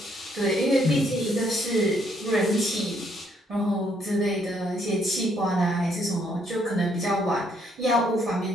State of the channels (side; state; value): both; normal; correlation 0.70